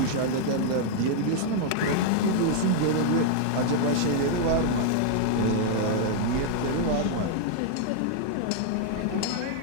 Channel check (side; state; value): both; different; correlation 0.00